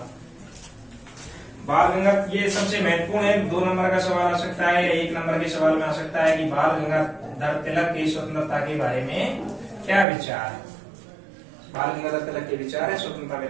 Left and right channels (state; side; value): drops out; left; at 10.1 s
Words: बाल गंगाधर, ये सबसे महत्वपूर्ण है। 2 नंबर का सवाल आ सकता है या 1 नंबर के सवाल में आ सकता है कि बाल गंगाधर तिलक की स्वतंत्रता के बारे में क्या विचार है। बाल गंगाधर तिलक के विचार है स्वतंत्रता